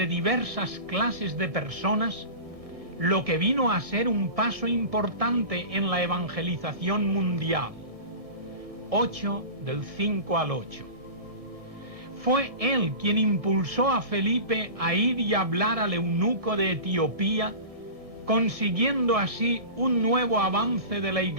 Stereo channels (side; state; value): left; late; 1.7 ms